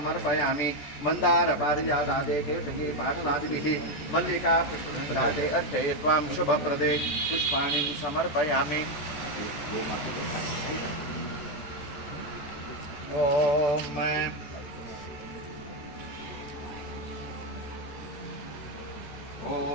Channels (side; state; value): right; late; 14 ms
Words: मंदार पारिजातादे केतकी पाटलादिभिः मल्लिका पुष्पराजे अर्चयित्वां शुभप्रदे पुष्पाणि समर्पयामि ओम